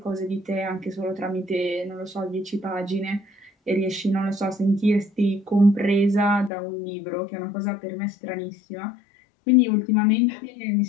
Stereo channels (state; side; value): drops out; right; at 6.5 s